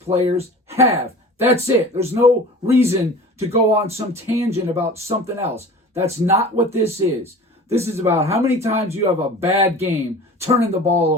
have. That's it. There's no reason to go on some tangent about something else. That's not what this is. This is about how many times you have a bad game turning the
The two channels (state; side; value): normal; both; correlation 0.40